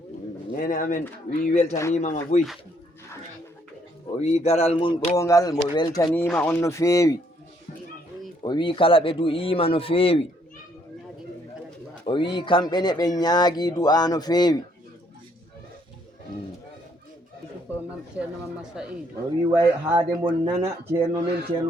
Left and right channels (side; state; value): both; normal; correlation 0.68